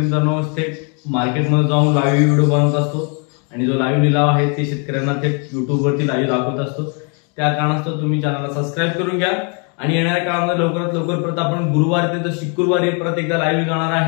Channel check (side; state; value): right; quieter; 37.4 dB